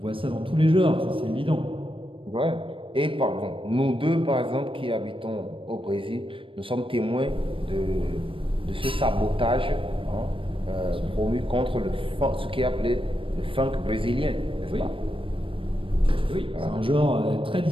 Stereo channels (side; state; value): left; late; 0.25 ms